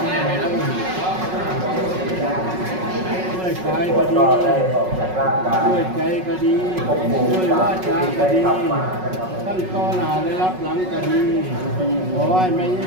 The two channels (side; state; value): left; late; 5.4 ms